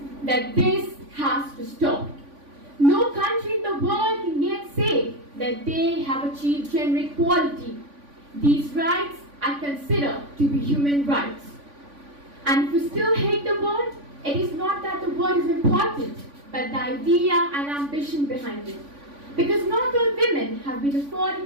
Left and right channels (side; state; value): left; late; 3.5 ms